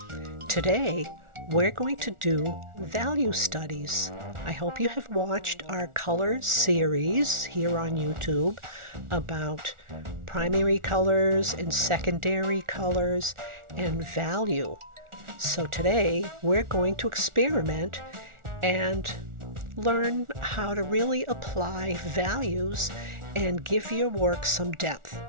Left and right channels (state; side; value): late; left; 1.4 ms